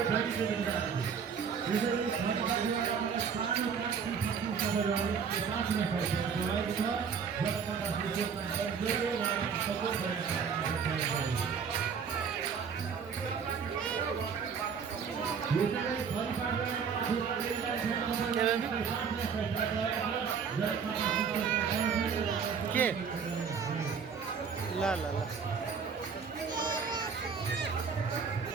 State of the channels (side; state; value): left; quieter; 6.4 dB